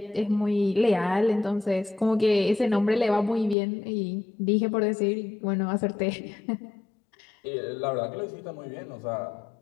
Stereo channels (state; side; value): drops out; right; at 3.6 s